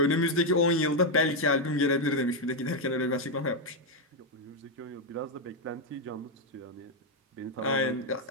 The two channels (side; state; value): both; normal; correlation 0.02